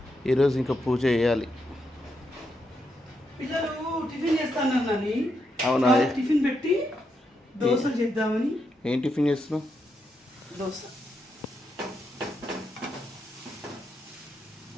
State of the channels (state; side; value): normal; both; correlation 0.82